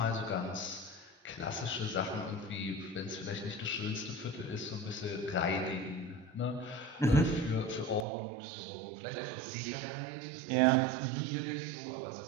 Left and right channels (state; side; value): drops out; left; at 8.1 s